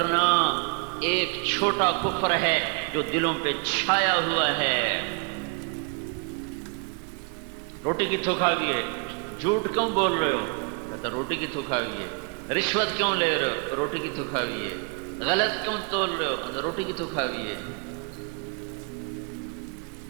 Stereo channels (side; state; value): left; quieter; 33.7 dB